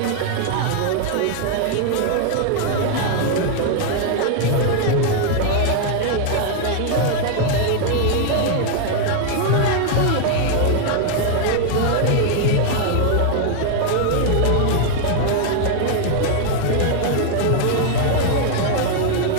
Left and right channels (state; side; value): different; both; correlation 0.00